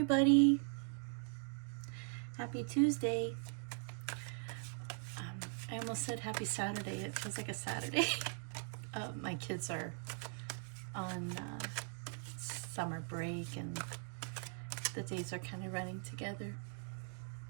Happy Tuesday. I almost said happy Saturday. It feels like a Saturday. My kids are on summer break and the days are kind of running together.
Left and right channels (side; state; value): left; silent; 50 dB below the other